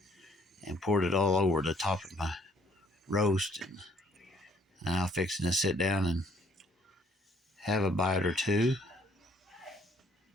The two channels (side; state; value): both; normal; correlation 0.63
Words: and poured it all over the top of my roast. And I'm fixing to sit down and have a bite or two.